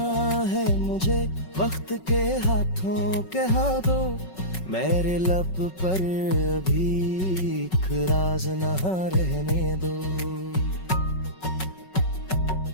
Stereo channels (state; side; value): late; right; 5.4 ms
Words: है मुझे वक्त के हाथों कहा दो, मेरे लब पर अभी एक राज ना रहने दो।